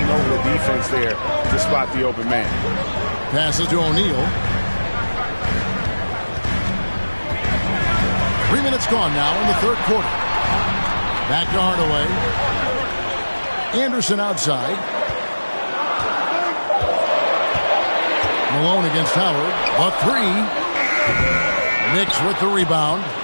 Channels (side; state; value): both; inverted; correlation -1.00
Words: over the defense there to spot the open man. Passes to O'Neal. 3 minutes gone now in the 3rd quarter. Back to Hardaway. Anderson outside. Malone against Howard. A 3. Knicks with the rebound.